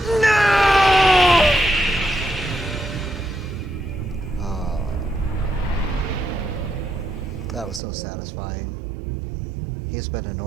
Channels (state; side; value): drops out; left; at 7.8 s